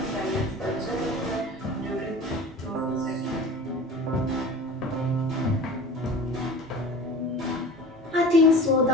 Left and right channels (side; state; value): both; normal; correlation 0.38